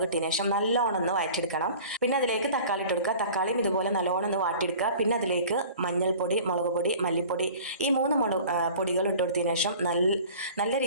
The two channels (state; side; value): inverted; both; correlation -0.44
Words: ഇട്ടതിന് ശേഷം നല്ലോണം ഒന്ന് വഴറ്റിയെടുക്കണം. പിന്നെ അതിലേക്ക് തക്കാളി ഇട്ട് കൊടുക്കുക. തക്കാളിയും ഇതുപോലെ നല്ലോണം ഒന്ന് വാട്ടിയെടുക്കുക. പിന്നെ അതിലേക്ക് മഞ്ഞൾപ്പൊടി, മുളക് പൊടി, മല്ലിപ്പൊടി ഈ മൂന്ന് പൊടികൾ ഇട്ട് കൊടുത്തതിന് ശേഷം നല്ല